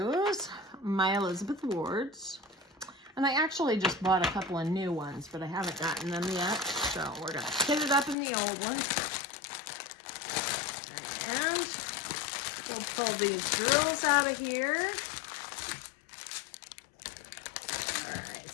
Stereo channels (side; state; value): right; drops out; at 8.2 s